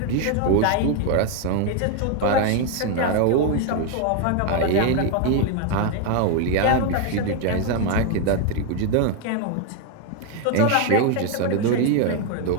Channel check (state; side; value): different; both; correlation 0.01